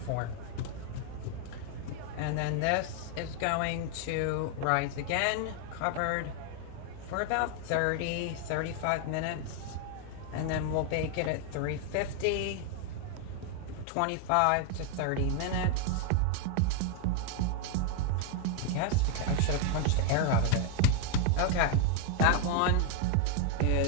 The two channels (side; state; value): both; different; correlation 0.00